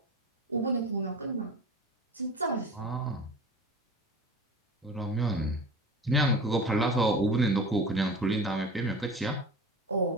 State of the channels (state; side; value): normal; both; correlation 0.36